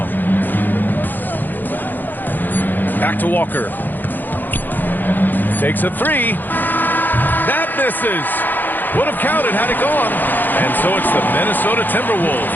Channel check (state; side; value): late; right; 0.089 ms